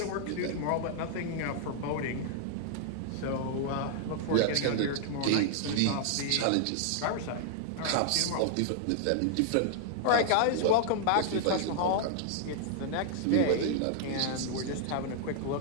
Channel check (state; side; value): different; both; correlation -0.01